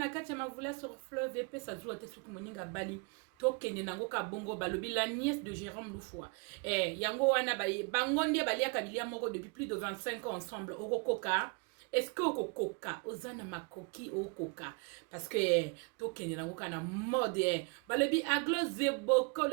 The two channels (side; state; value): left; quieter; 33.5 dB